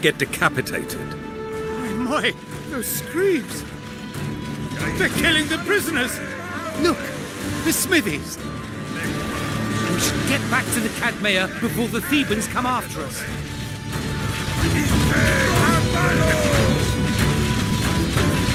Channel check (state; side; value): identical; both; correlation 1.00